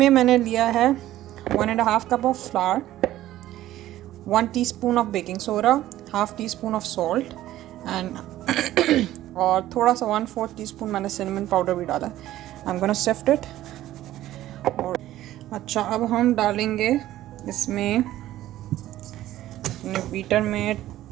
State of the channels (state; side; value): quieter; left; 14.2 dB